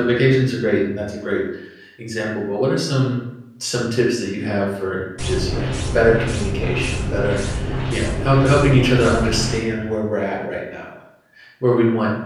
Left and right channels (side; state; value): both; identical; correlation 1.00